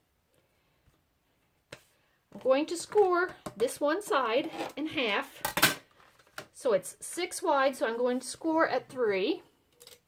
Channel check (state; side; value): identical; both; correlation 1.00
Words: I'm going to score this one side in half. So it's 6 wide, so I'm going to score at 3.